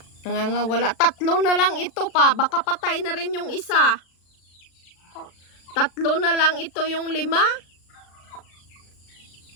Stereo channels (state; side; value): late; right; 36 ms